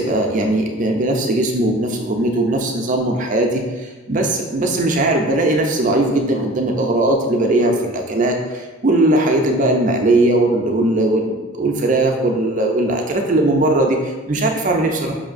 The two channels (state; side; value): normal; both; correlation 0.43